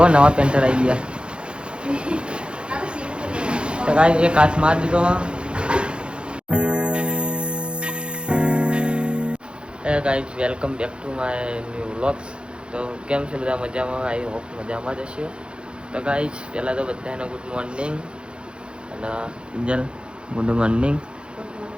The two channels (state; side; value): late; left; 0.054 ms